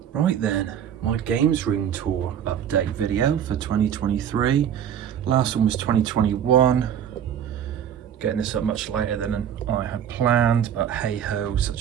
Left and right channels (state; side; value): quieter; left; 9.3 dB